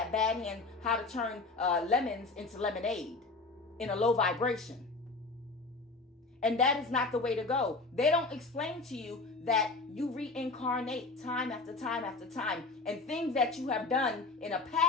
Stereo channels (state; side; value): quieter; right; 3.5 dB